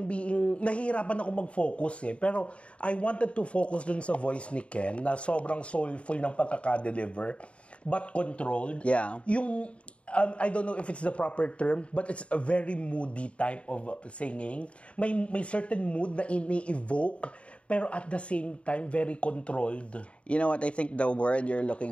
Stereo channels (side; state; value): right; late; 0.061 ms